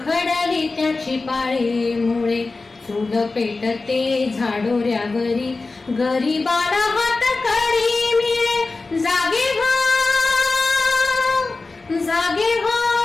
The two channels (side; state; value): right; quieter; 3.6 dB